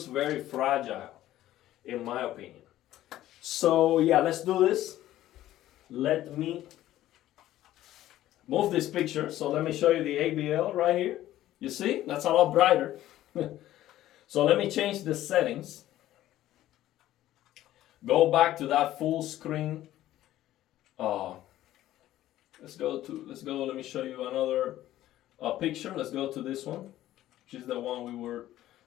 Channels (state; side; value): quieter; right; 14.0 dB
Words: very fragile, in my opinion. So yeah, let's do this. Let me move this picture. So let me show you the ABL right here. You see, that's a lot brighter. So let me change the settings. Go back to that full screen. Let's go. Let me show you another picture. Let's go to this one, which is the one we were